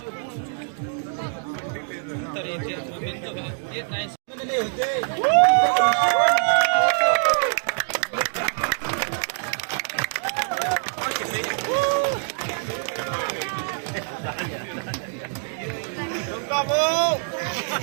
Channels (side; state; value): left; silent; digital silence